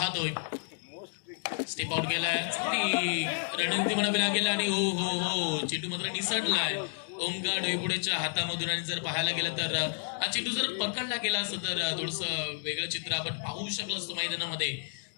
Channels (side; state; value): right; silent; digital silence